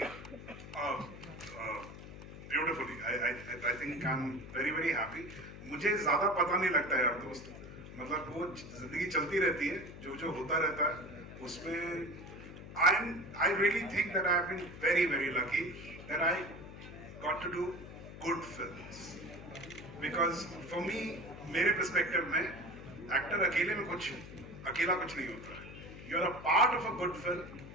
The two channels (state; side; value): noise; left; hum, 13 dB below the sound